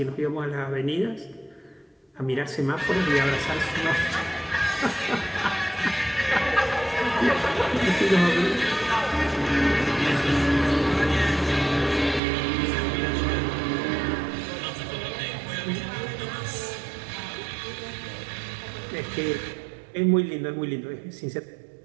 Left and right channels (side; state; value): left; drops out; at 12.2 s